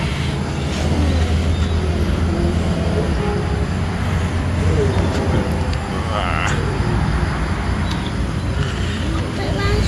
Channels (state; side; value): identical; both; correlation 1.00